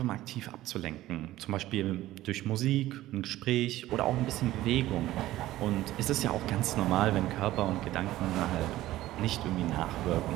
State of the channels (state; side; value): quieter; left; 15.4 dB